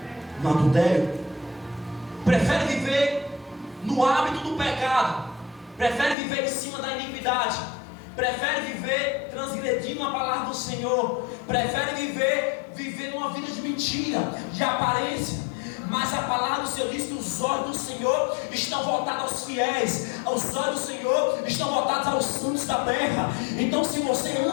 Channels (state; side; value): drops out; right; at 6.2 s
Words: no adultério. Prefere viver no hábito do pecado, prefere viver em cima da iniquidade, prefere viver transgredindo a palavra do Senhor, prefere viver numa vida de mentira, de aparência. Mas a palavra do Senhor diz que os olhos do Senhor estão voltados aos fiéis, os olhos do Senhor estão voltados aos santos da terra. Então, se você